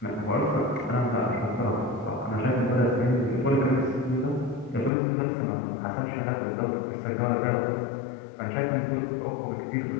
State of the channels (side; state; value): right; drops out; at 4.9 s